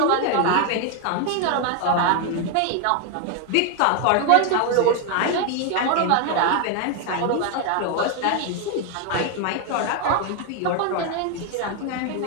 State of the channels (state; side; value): different; both; correlation 0.01